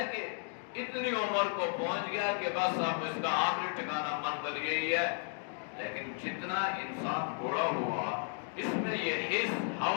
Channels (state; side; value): silent; right; 55 dB below the other